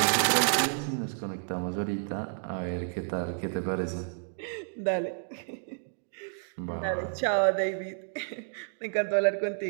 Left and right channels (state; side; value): silent; left; digital silence